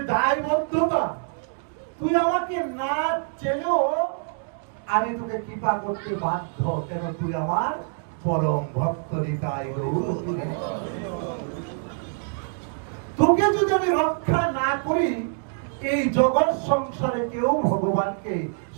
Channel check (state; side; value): silent; left; 59 dB below the other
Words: দায়বদ্ধতা, তুই আমাকে না চেলেও আমি তোকে কৃপা করতে বাধ্য, কেন তুই আমার পরম ভক্ত। তোকে যদি আমি রক্ষা না করি, এই জগৎ সংসারে কেউ ভগবানকে